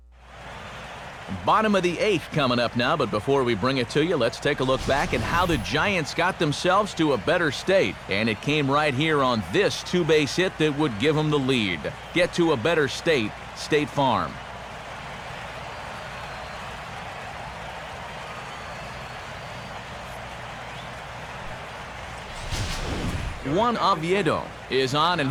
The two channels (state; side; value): identical; both; correlation 1.00